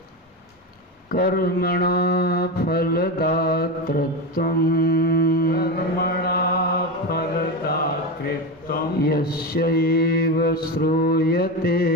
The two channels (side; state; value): both; normal; correlation 0.18